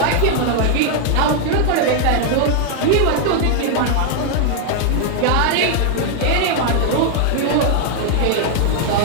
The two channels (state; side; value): different; both; correlation 0.00